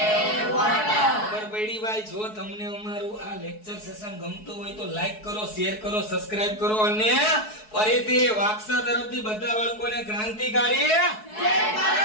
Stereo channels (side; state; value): right; late; 4.7 ms